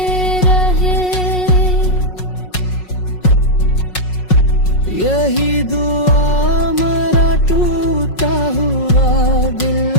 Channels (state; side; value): late; right; 5.5 ms